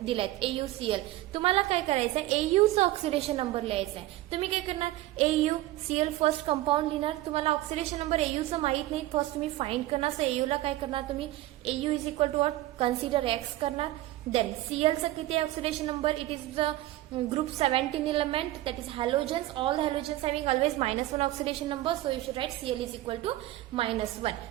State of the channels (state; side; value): quieter; left; 16.2 dB